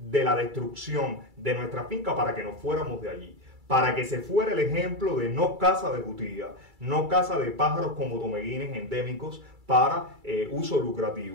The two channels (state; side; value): late; left; 2.3 ms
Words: la destrucción de nuestra finca para que nos fuéramos de allí. Para que se fuera el ejemplo de no caza de jutía, no caza de pájaros como tomeguines endémicos para uso